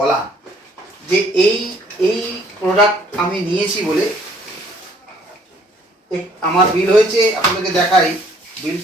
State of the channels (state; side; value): normal; both; correlation 0.61